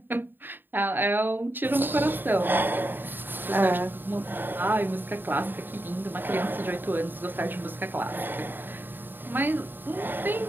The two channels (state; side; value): late; left; 0.094 ms